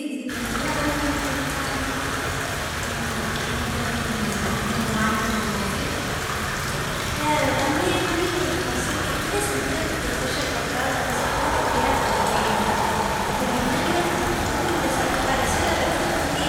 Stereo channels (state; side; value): identical; both; correlation 1.00